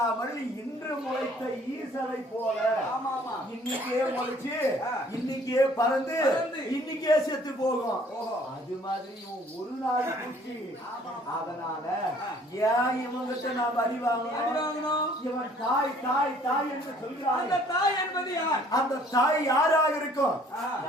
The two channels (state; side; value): normal; both; correlation 0.57